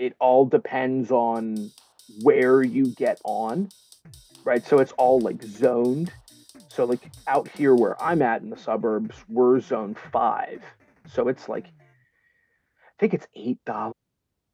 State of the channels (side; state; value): both; identical; correlation 1.00